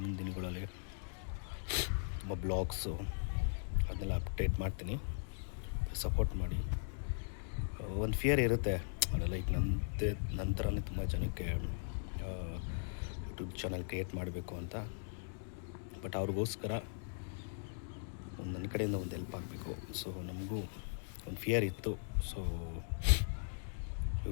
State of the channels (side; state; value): right; silent; digital silence